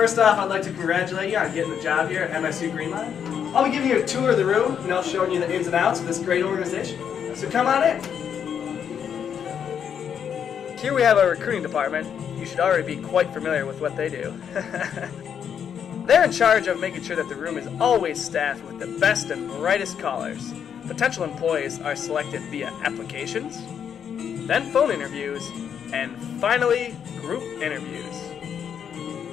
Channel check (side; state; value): right; quieter; 8.0 dB